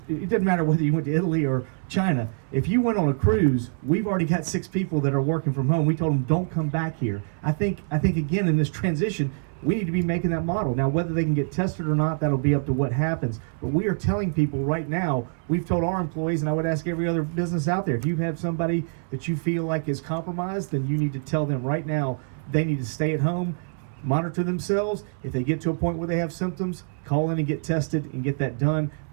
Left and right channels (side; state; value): left; silent; 62 dB below the other